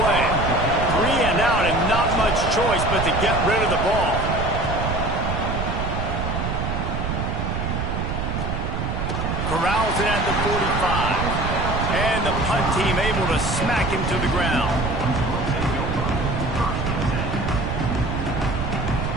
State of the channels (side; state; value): right; noise; rumble, 2 dB below the sound